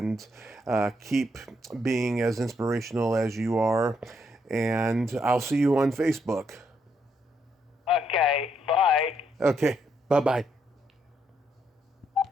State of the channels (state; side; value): normal; both; correlation 0.76